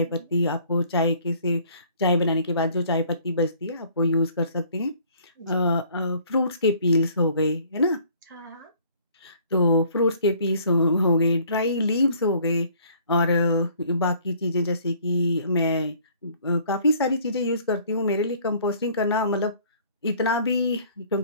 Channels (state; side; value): inverted; both; correlation -0.57